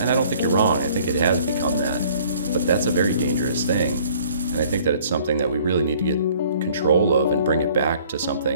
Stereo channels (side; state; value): both; inverted; correlation -0.56